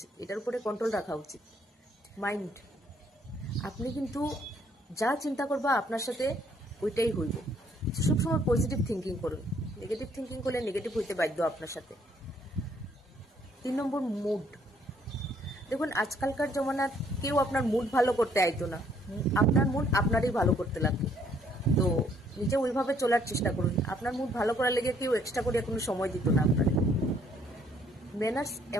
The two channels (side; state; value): both; normal; correlation 0.65